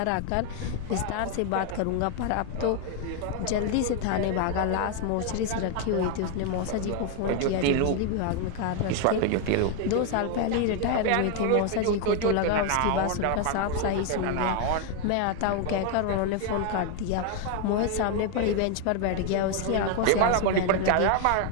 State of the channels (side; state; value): both; different; correlation 0.01